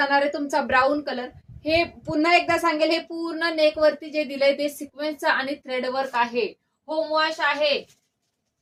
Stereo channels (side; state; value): both; identical; correlation 1.00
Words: आहे तुमचा ब्राऊन कलर. हे पुन्हा एकदा सांगेल, हे पूर्ण नेक वरती जे दिलंय ते सिक्वेन्सचं आणि थ्रेड वर्क आहे. होम वॉश आहे.